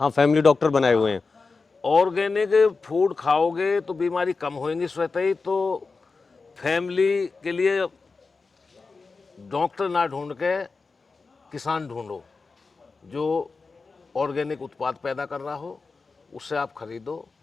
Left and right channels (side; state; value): right; quieter; 4.3 dB